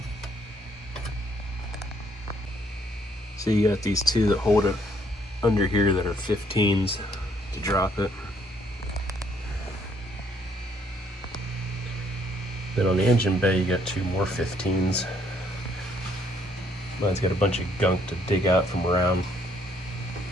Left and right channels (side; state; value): both; normal; correlation 0.68